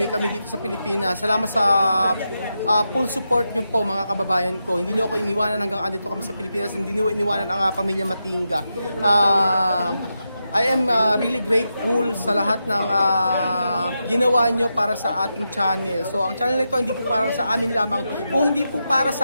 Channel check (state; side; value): inverted; both; correlation -0.87